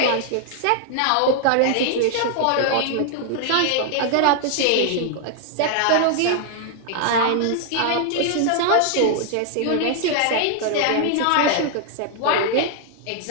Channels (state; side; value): different; both; correlation 0.00